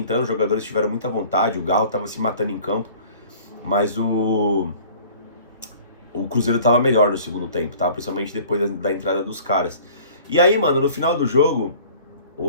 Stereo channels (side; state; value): both; inverted; correlation -0.49